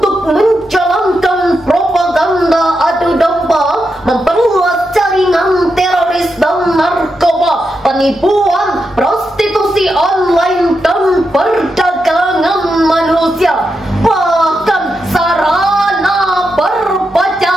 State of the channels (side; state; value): both; normal; correlation 0.86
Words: menjalankan propaganda adu domba, memperluas jaringan teroris dan narkoba, penipuan, prostitusi online dan perdagangan manusia, bahkan sarana